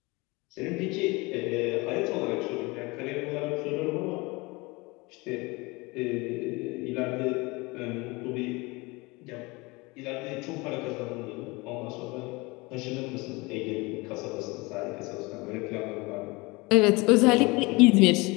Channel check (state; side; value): quieter; right; 24.8 dB